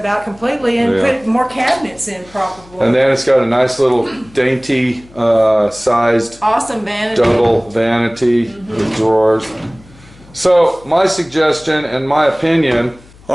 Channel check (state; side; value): noise; left; hum, 25 dB below the sound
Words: out completely and put more cabinets in, probably. And then it's got a nice little dainty sized awesome vanity. Double vanity with drawers. So my suggestion and my opinion